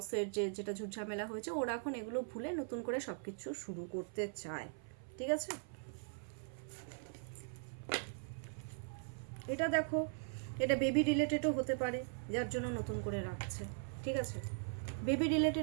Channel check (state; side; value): silent; left; 51 dB below the other